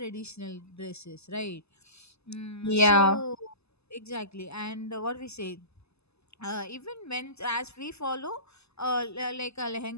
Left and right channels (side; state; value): right; late; 0.79 ms